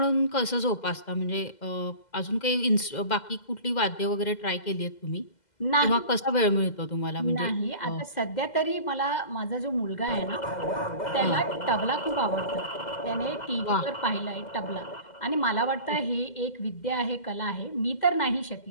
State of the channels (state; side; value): late; right; 2.0 ms